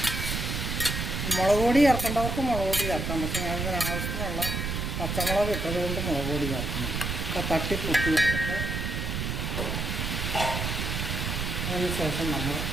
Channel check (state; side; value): noise; right; rumble, 2 dB below the sound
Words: മുളക് പൊടി ചേർക്കേണ്ടവർക്ക് മുളക് പൊടി ചേർക്കാം. പക്ഷേ ഞാനിതിന് ആവശ്യത്തിനുള്ള പച്ചമുളക് ഇട്ടതുകൊണ്ട് മുളക് പൊടി ചേർക്കുന്നു. അപ്പോൾ തട്ടിപ്പൊട്ടി വെച്ചിട്ട് അതിന് ശേഷം നമ്മൾ